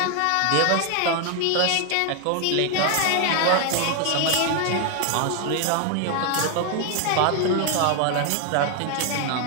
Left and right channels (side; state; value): both; different; correlation 0.00